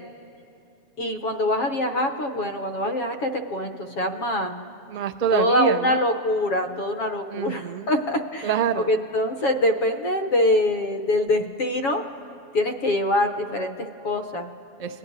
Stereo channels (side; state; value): right; late; 7.3 ms